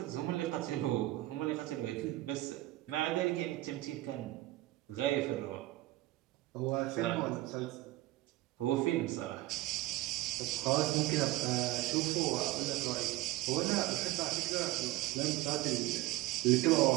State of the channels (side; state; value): left; quieter; 18.0 dB